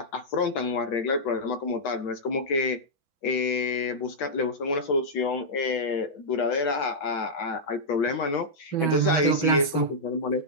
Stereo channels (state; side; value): late; right; 6.2 ms